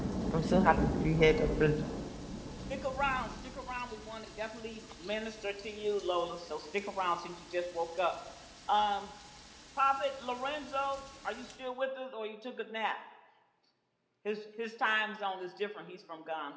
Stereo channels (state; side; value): identical; both; correlation 1.00